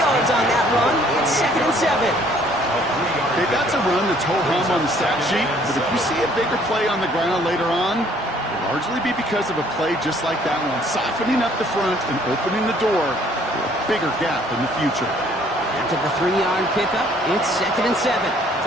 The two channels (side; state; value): both; normal; correlation 0.60